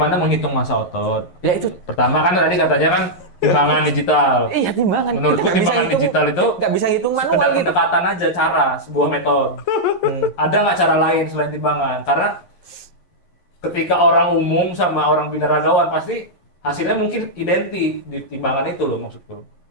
menghitung masa otot. Ya itu. Pertama kan tadi katanya kan timbangan digital. Iya timbangan. Menurutku Kita nggak bisa timbangan hitung- digital itu nggak bisa hitung sekedar manual gitu. pendekatan aja, cara, sebuah metode. Ada nggak cara lain selain timbangan? Karena ketika orang umum sama orang binaragawan pasti hasilnya mungkin identik di timbangan itu loh maksudku.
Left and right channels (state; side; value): late; right; 11 ms